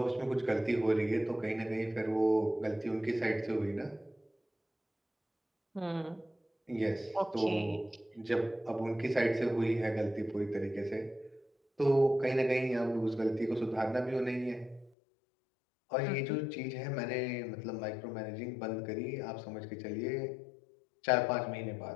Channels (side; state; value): right; drops out; at 14.9 s